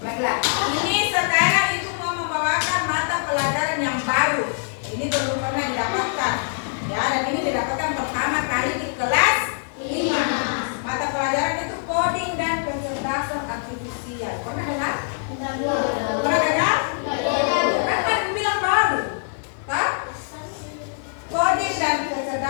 Baiklah, ini sekarang Ibu mau membawakan mata pelajaran yang baru. Ini belum pernah didapatkan. Ya, dan ini didapatkan pertama kali di kelas 5. Mata pelajaran itu coding dan kecerdasan artifisial. Pernah dengar? Pernah dengar? Kan bilang baru. Hah? Coding dan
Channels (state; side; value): silent; right; digital silence